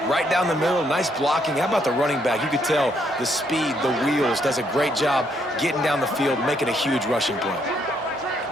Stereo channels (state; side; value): normal; both; correlation 0.72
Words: right down the middle, nice blocking. How about the running back? You could tell the speed, the wheels, does a great job getting down the field, making a huge rushing play.